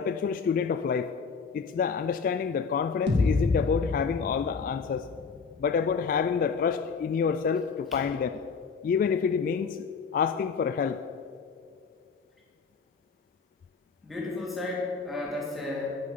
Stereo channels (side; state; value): right; quieter; 5.4 dB